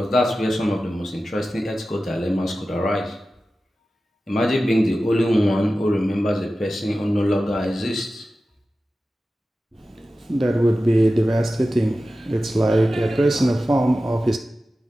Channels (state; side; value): normal; both; correlation 0.94